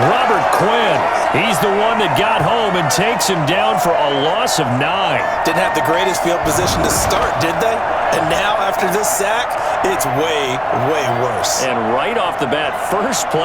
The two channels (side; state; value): both; identical; correlation 1.00